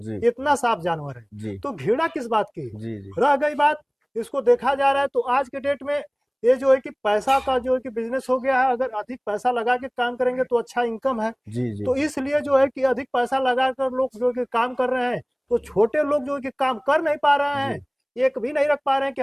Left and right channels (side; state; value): both; identical; correlation 1.00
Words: इतना साफ जानवर है। जी। तो घृणा किस बात की? जी। जी। रह गई बात, इसको देखा जा रहा है तो आज के डेट में ये जो है कि पैसा का जो है कि बिजनेस हो गया है। अगर अधिक पैसा लगा के काम करेंगे तो अच्छा इनकम है। जी। जी। तो इसलिए जो है कि अधिक पैसा लगाकर लोग जो है कि काम कर रहे हैं, तो छोटे लोग जो है कि काम कर नहीं पा रहे जी। हैं। एक भी नहीं रख पा रहे हैं कि